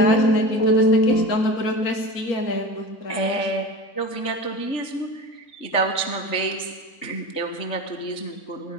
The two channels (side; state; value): right; late; 3.4 ms